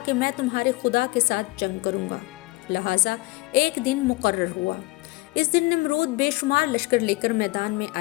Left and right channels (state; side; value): quieter; right; 22.2 dB